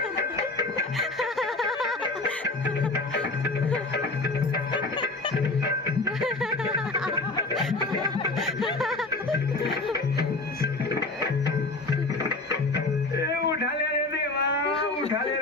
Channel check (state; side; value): quieter; right; 3.2 dB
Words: उठा ले रे देवा, उठा ले